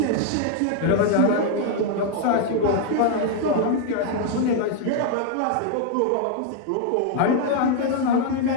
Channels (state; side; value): different; both; correlation 0.00